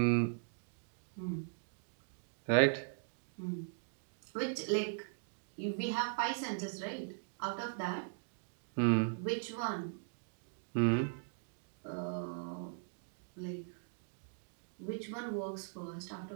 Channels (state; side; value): silent; left; digital silence